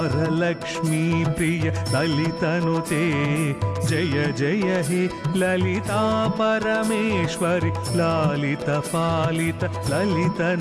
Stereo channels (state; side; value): identical; both; correlation 1.00